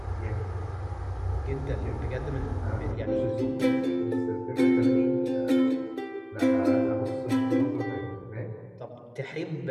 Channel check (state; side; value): identical; both; correlation 1.00